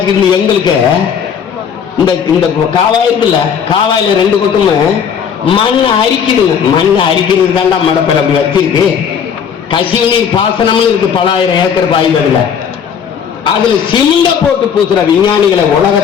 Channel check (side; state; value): right; quieter; 7.5 dB